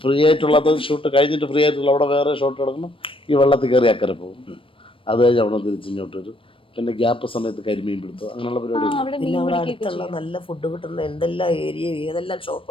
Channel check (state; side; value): late; right; 0.25 ms